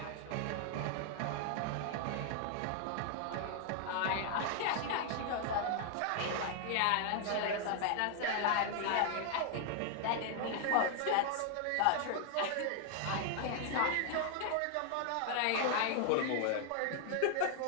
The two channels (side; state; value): both; different; correlation 0.00